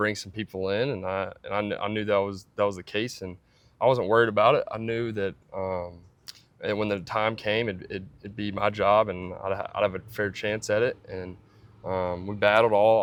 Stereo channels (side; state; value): both; identical; correlation 1.00